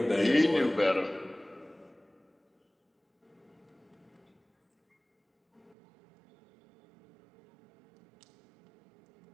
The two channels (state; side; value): drops out; left; at 5.8 s